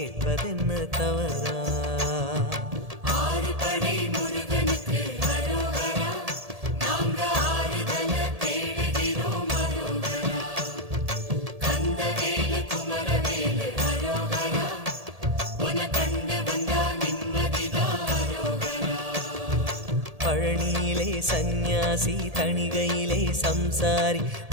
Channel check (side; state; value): left; late; 1.7 ms